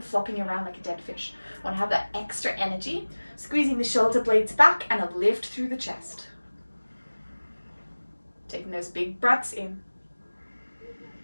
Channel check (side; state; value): both; inverted; correlation -1.00